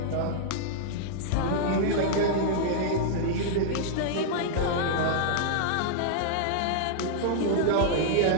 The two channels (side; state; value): both; different; correlation -0.01